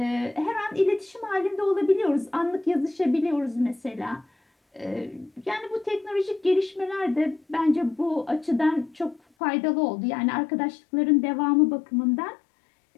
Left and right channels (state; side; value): drops out; right; at 9.2 s